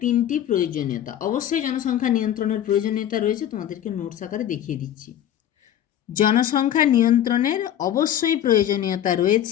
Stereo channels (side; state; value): right; quieter; 11.0 dB